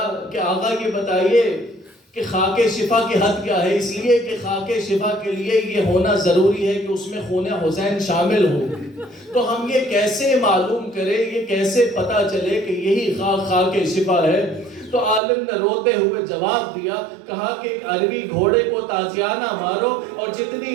کہ آقا یہ بتائیے کہ خاک شفا کی حد کیا ہے؟ اس لیے کہ خاک شفا کے لیے یہ ہونا ضروری ہے کہ اس میں خون حسین شامل ہو. تو ہم یہ کیسے معلوم کریں، یہ کیسے پتا چلے کہ یہی خاک شفا ہے؟ تو عالم نے روتے ہوئے جواب دیا، کہا کہ ایک عربی گھوڑے کو تازیانہ مارو اور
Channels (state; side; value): drops out; left; at 15.2 s